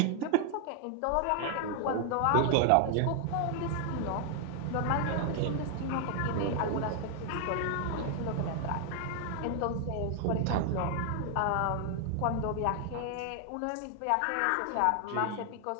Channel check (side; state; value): both; different; correlation 0.00